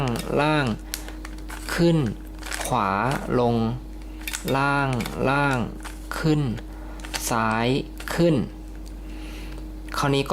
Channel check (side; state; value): both; identical; correlation 1.00